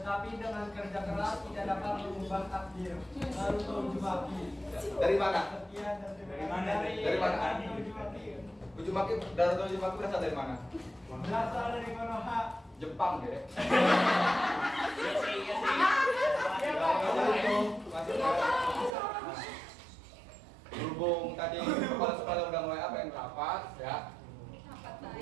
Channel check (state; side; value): drops out; left; at 18.9 s